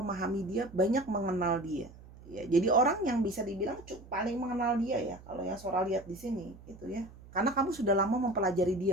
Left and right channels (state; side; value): noise; right; hum, 20 dB below the sound